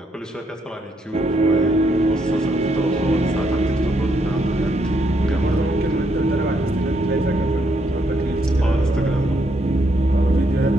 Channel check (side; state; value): both; normal; correlation 0.75